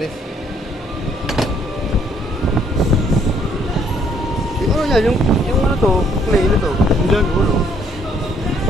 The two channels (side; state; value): both; normal; correlation 0.66